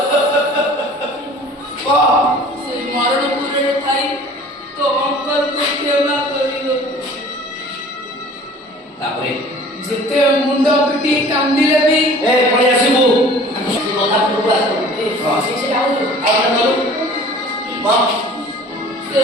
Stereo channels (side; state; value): both; normal; correlation 0.47